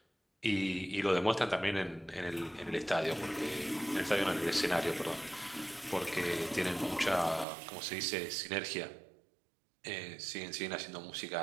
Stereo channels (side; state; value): left; drops out; at 7.5 s